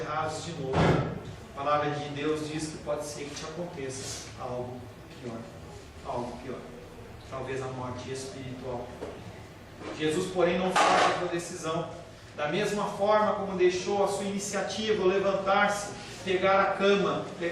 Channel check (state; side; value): identical; both; correlation 1.00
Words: de novo, a palavra de Deus diz que pode ser que te aconteça algo pior. Algo pior. Talvez a morte espiritual. Jesus, porém, não faz a sua decisão. Da mesma forma como deixou a sua iniciativa, levantar-se, pegar a cama,